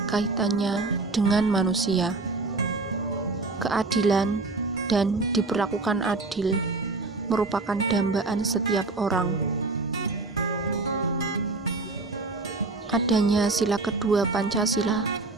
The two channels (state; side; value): quieter; left; 3.5 dB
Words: kaitannya dengan manusia. Keadilan dan diperlakukan adil merupakan dambaan setiap orang. Adanya sila kedua Pancasila,